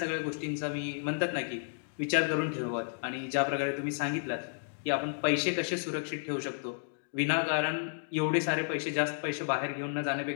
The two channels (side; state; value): right; silent; digital silence